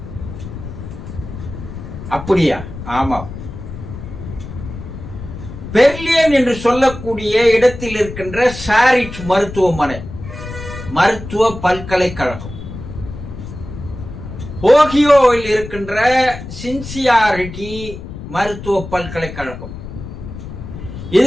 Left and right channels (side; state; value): left; noise; rumble, 11 dB below the sound